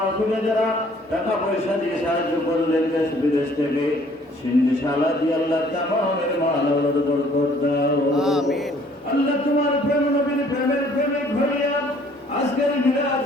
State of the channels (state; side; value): normal; both; correlation 0.58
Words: যারা টাকা পয়সা দিয়ে সাহায্য করলেন দেশ বিদেশ থেকে সিন্দিশালা দিয়ে আল্লাহ তামামের মাল আওলাদ বরকত দাও। আমিন। আল্লাহ তোমার প্রেম নবীর প্রেমের প্রেমে ভরিয়া আজকের